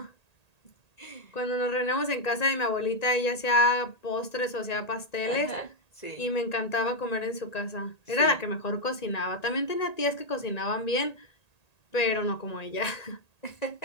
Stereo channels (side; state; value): right; late; 1.8 ms